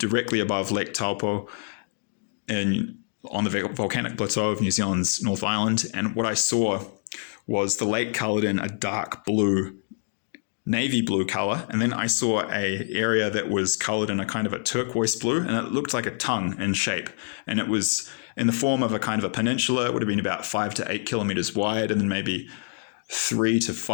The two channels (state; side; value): silent; right; digital silence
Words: above Lake Taupo on the volcanic plateau of New Zealand's North Island. And what I saw was the lake colored in a dark blue, navy blue color. And then I saw a area that was colored in a kind of a turquoise blue, and it looked like a tongue in shape. And it was in the form of a kind of a peninsula. It would have been about 5 to 8 kilometers wide, and then maybe 3 to